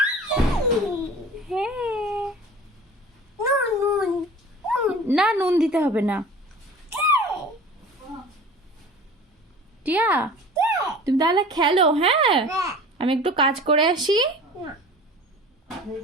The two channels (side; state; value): both; normal; correlation 0.41